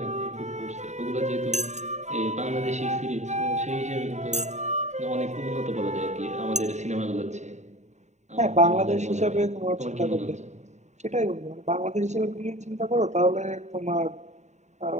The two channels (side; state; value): left; late; 0.34 ms